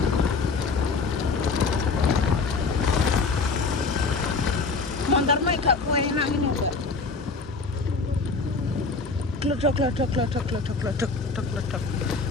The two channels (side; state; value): right; quieter; 4.2 dB